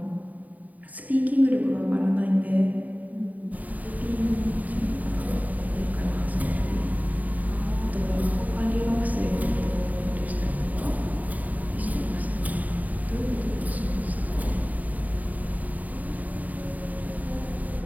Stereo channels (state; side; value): late; left; 0.075 ms